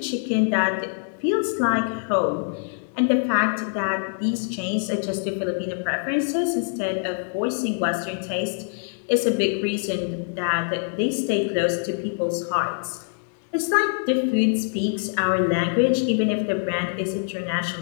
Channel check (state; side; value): silent; right; digital silence